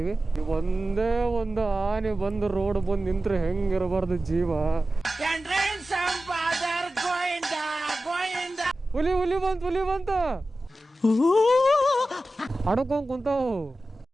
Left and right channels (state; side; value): normal; both; correlation 0.95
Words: ಒಂದೇ ಒಂದು ಆನೆ ಬಂದು ರೋಡ್ ಬಂದು ನಿಂತ್ರೆ ಹೆಂಗಿರಬಾರ್ದು ಜೀವ. ಹುಲಿ ಬಂತು ಅಡ್ಕೊಂಡ್ ಕುಂತಾವು.